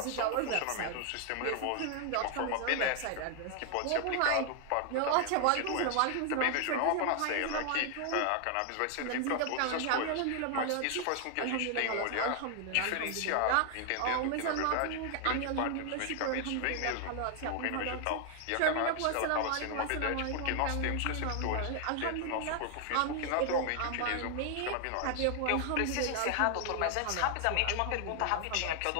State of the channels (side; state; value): both; different; correlation 0.00